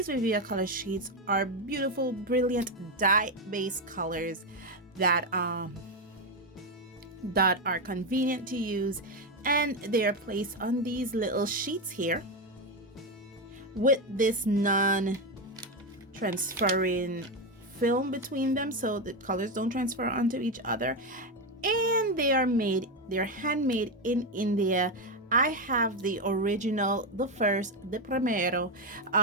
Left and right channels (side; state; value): both; normal; correlation 0.10